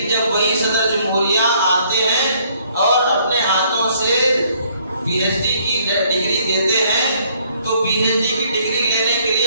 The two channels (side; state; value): both; inverted; correlation -0.65